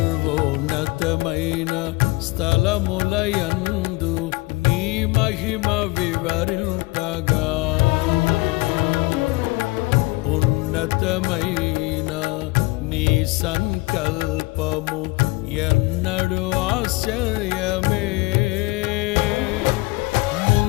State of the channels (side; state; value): right; quieter; 23.0 dB